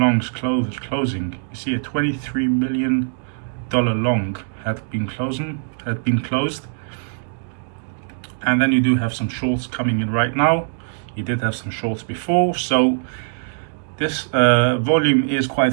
closing. You see a $23 million long had been closed, and then you do have some shorts coming in right now. You did have some shorts before, so this volume is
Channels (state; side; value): silent; left; digital silence